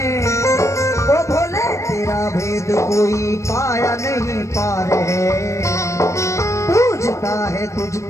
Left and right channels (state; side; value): late; right; 0.14 ms